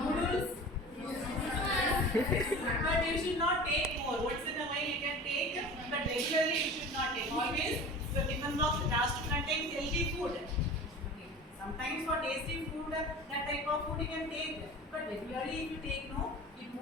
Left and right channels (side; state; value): both; normal; correlation 0.37